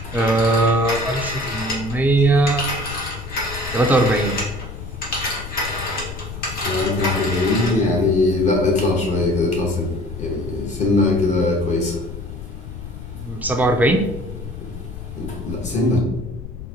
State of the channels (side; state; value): left; noise; rumble, 11 dB below the sound